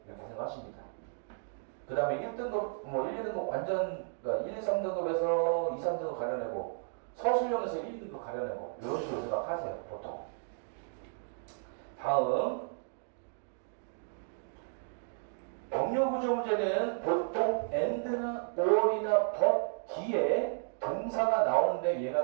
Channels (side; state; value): left; silent; digital silence